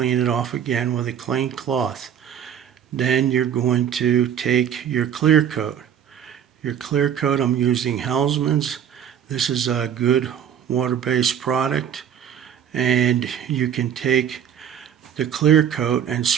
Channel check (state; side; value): quieter; left; 9.1 dB